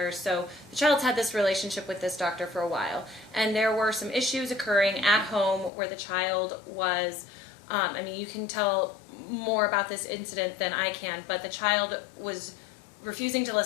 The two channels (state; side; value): drops out; right; at 5.7 s